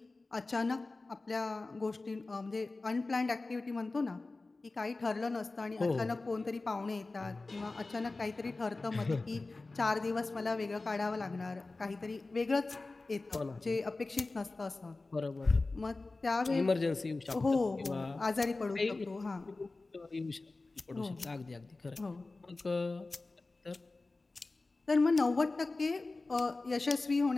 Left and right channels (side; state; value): right; quieter; 3.4 dB